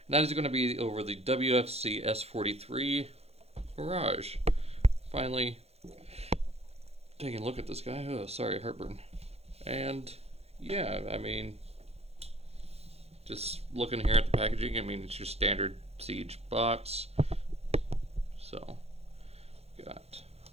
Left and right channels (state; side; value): late; left; 0.30 ms